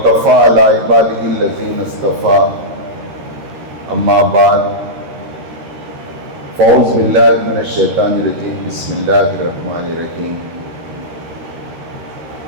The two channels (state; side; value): late; left; 13 ms